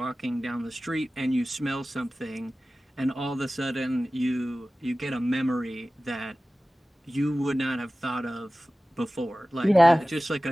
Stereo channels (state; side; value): normal; both; correlation 0.97